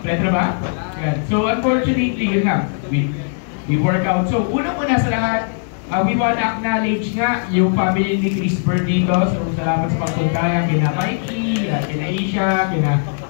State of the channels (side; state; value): right; silent; 56 dB below the other